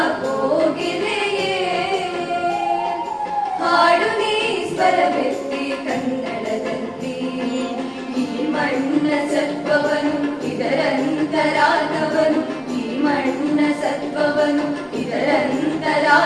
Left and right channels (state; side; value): identical; both; correlation 1.00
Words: ಕೋಗಿಲೆಯೇ ಹಾಡು ನೀ ಸ್ವರವೆತ್ತಿ ಕನ್ನಡದಲ್ಲಿ ಈ ಮಣ್ಣ ಸತ್ವವನು ಇದರಂತರಾರ್ಥವನು ಈ ಮಣ್ಣ ಸತ್ವವನು